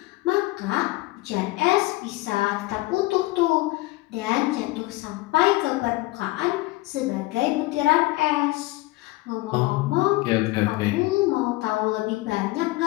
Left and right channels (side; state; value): right; quieter; 20.4 dB